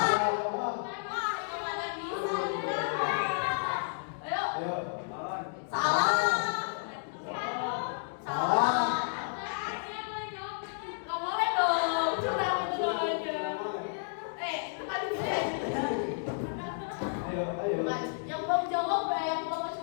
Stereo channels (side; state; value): right; silent; digital silence